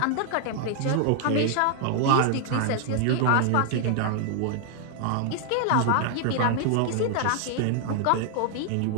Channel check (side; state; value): both; different; correlation 0.00